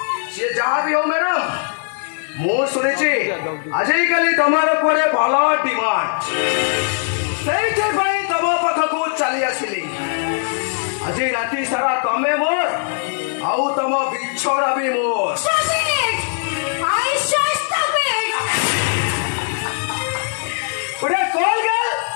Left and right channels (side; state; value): right; silent; digital silence